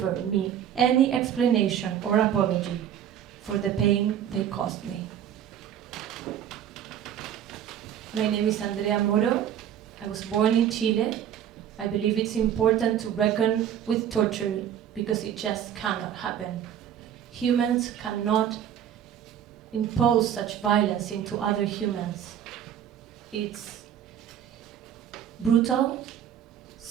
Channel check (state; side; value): quieter; left; 9.8 dB